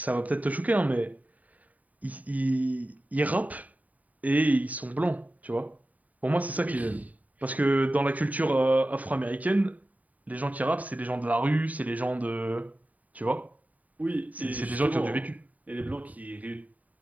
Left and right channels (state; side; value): late; left; 0.072 ms